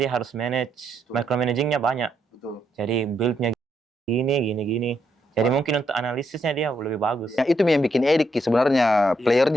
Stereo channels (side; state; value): both; normal; correlation 0.77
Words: dia harus manage, Betul. micromanagingnya banyak. Betul. Jadi build-nya gini. Jadi mungkin untuk analisisnya dia lebih bagus. Yang itu yang bikin edik sebenarnya